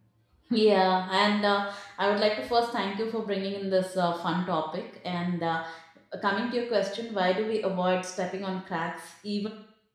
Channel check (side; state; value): both; identical; correlation 1.00